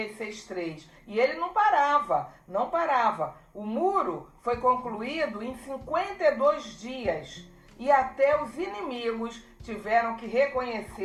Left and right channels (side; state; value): both; identical; correlation 1.00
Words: 6:3. E ele não parava. O muro foi concluído em 52 dias. E até os inimigos tiveram que